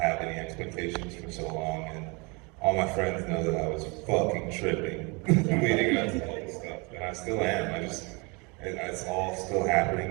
any expectations for so long, and all my friends know that I was fucking tripping leading up to all this stuff, and I still am. It's all still happening,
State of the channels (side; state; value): left; quieter; 29.4 dB